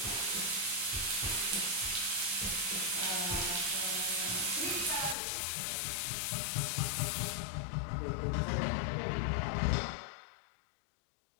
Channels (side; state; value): right; drops out; at 5.2 s